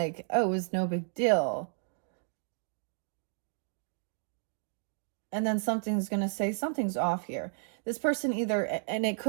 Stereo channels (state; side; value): silent; left; digital silence